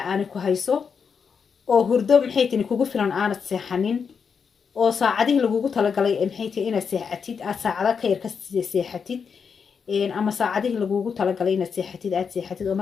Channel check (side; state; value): right; quieter; 6.2 dB